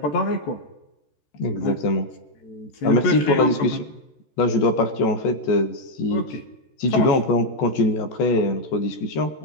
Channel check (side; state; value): right; late; 14 ms